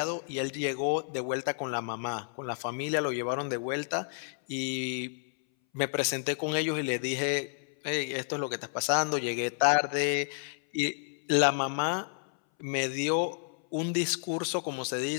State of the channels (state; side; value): silent; right; 57 dB below the other